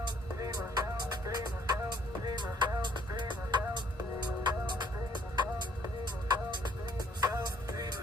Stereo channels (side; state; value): both; normal; correlation 0.63